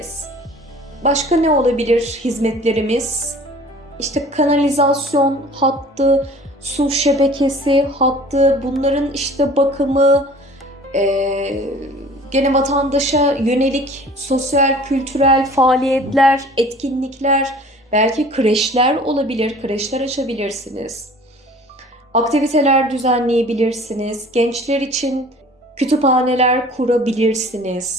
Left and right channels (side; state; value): both; normal; correlation 0.47